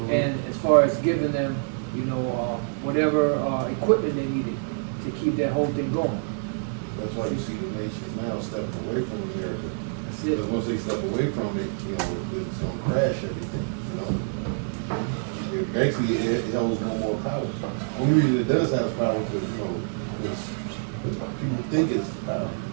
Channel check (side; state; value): left; silent; digital silence